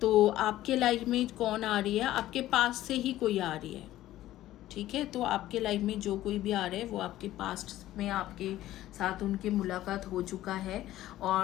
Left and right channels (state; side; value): quieter; right; 14.5 dB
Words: आपके life में कौन आ रही है? आपके पास से ही कोई आ रही है, ठीक है। तो आपके लाइफ में जो कोई भी आ रहा है वो आपके पास्ट में आपके साथ उनकी मुलाकात हो चुका है।